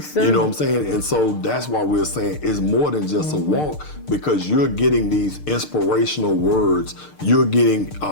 center. You know what I'm saying? And so that's why we're saying it's more than just a walk, because you're getting these inspirational words. You're getting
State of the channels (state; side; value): late; right; 6.6 ms